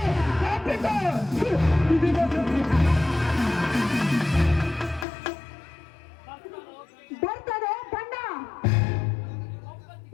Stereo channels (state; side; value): drops out; right; at 5.1 s